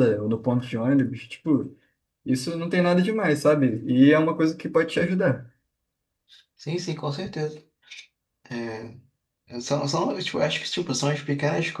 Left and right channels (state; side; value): identical; both; correlation 1.00